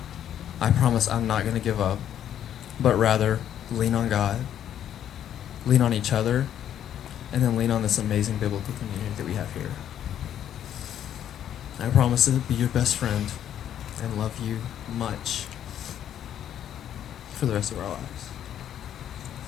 I promise I'm not going to give up, but rather lean on God, lean on each other, and then lean on this amazing biblical community that we have here. I promise to be your best friend and love you much for the rest of our lives.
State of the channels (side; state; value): right; quieter; 10.3 dB